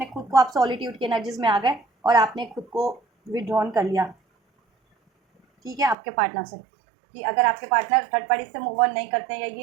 खुद को, आप सॉलिट्यूड की एनर्जीज में आ गए और आपने खुद को विड्रॉन कर लिया, ठीक है, आपके पार्टनर से। कि अगर आपके पार्टनर थर्ड पार्टी से मूव ऑन नहीं करते हैं या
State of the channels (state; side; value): drops out; left; at 6.0 s